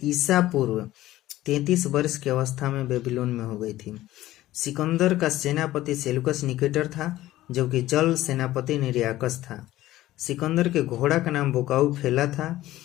ईसा पूर्व 33 वर्ष की अवस्था में बेबीलोन में हो गई थी। सिकंदर का सेनापति सेल्यूकस निकेटर था, जबकि जल सेनापति निर्याकस था। सिकंदर के घोड़ा का नाम बुकाउफेला था।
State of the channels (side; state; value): right; quieter; 15.4 dB